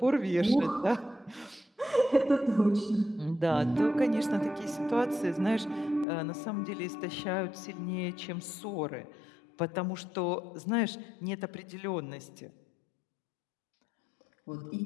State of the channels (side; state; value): right; drops out; at 6.1 s